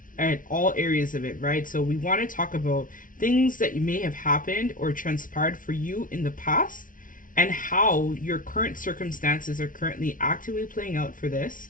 all areas of it, right? So we want to talk about things that may have happened or transpired for you in the past and how your current circumstances are currently actively playing out for this.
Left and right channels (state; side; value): late; right; 0.38 ms